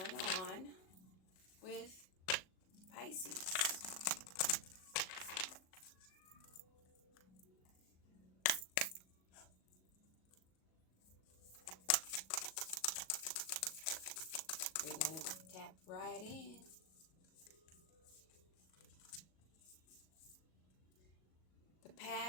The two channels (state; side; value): late; right; 38 ms